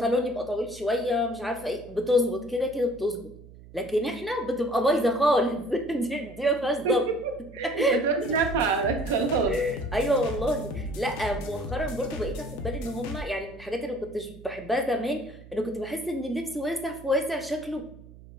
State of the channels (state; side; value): noise; right; hum, 19 dB below the sound